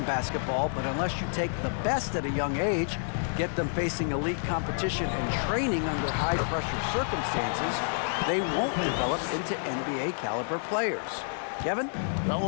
basketball, but unless you take the best at a young age, get them facing elite competition and training under high-pressure circumstances, they won't develop into NBA-caliber players. Kevin? Well,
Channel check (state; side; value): silent; right; digital silence